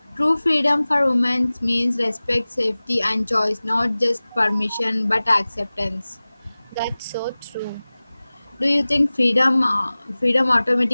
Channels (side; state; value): both; inverted; correlation -0.98